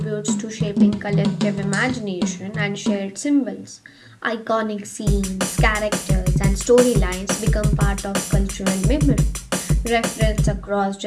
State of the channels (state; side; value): identical; both; correlation 1.00